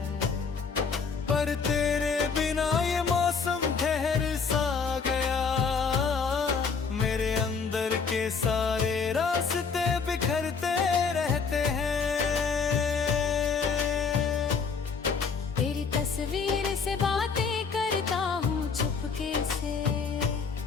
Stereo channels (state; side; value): quieter; right; 5.4 dB